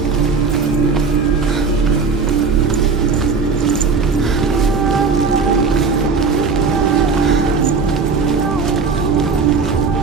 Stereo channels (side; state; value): left; quieter; 4.9 dB